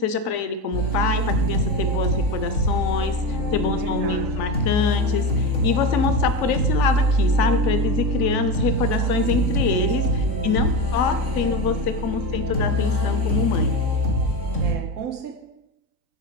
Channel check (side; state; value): left; late; 3.5 ms